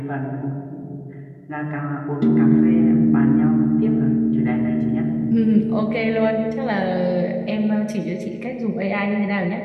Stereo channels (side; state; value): both; identical; correlation 1.00